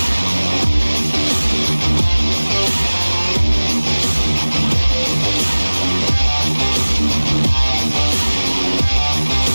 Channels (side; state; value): both; inverted; correlation -1.00